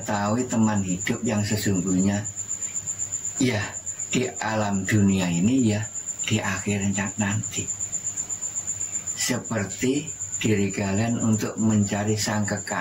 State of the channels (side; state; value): both; identical; correlation 1.00